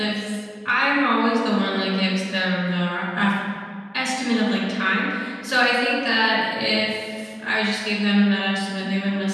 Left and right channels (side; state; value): both; identical; correlation 1.00